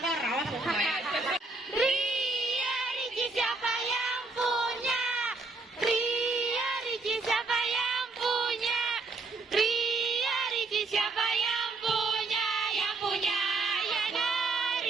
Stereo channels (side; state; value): left; quieter; 3.6 dB